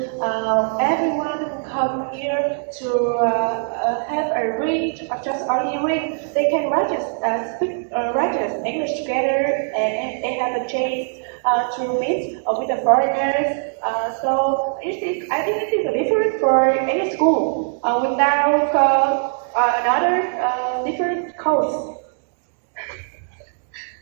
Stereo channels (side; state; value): left; silent; digital silence